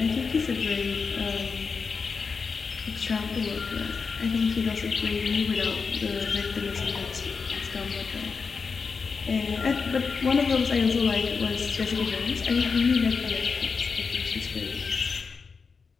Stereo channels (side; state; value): right; quieter; 5.1 dB